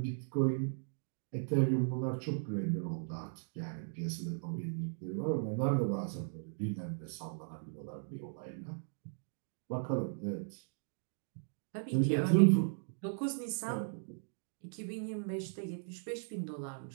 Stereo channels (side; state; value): left; silent; digital silence